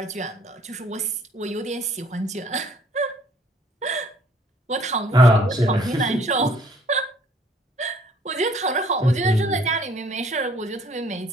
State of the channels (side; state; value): both; normal; correlation 0.59